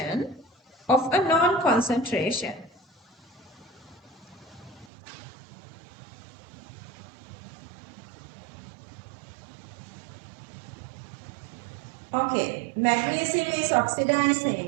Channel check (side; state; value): left; drops out; at 4.9 s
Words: of a known concentration. Okay, magnesium is